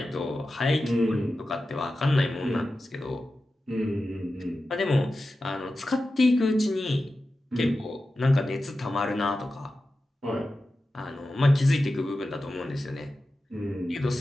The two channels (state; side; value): normal; both; correlation 0.93